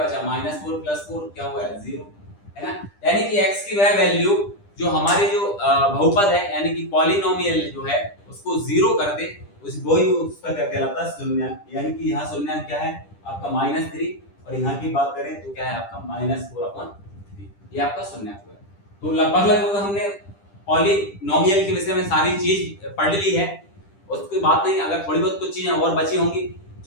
बचा, -4 प्लस 4 क्या हुआ, 0, है ना। यानी कि x की वह वैल्यू जो हमारे जो बहुपद है यानी कि पॉलिनोमियल जो है उसको जीरो कर दे, उस वही उसका क्या कहलाता है, शून्यक। यानी कि यहाँ शून्यक क्या है आपका -3, और यहाँ की बात करें तो क्या है आपका -4/3, ये आपका शून्यक है। तो लगभग हमने पॉलिनोमियल के विषय में सारी चीज पढ़ ली है, उसकी बात नहीं, अगर थोड़ी बहुत कुछ चीजें और बची होंगी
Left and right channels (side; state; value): right; late; 10 ms